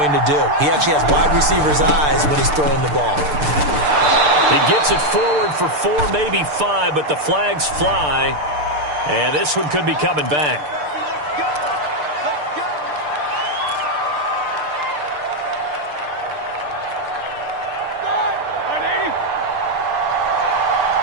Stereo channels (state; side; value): late; left; 6.7 ms